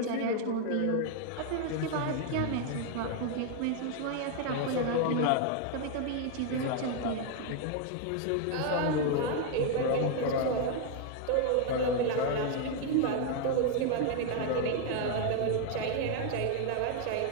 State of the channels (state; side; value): different; both; correlation 0.00